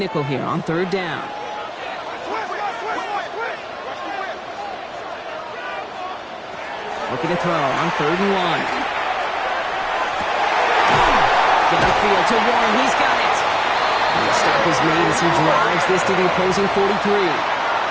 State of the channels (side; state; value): both; identical; correlation 1.00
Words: here on 3rd down. Looking to throw on 3rd and 1. Downfield to Warren. He's got it. And the stop is made as he drives this to the opposing 43.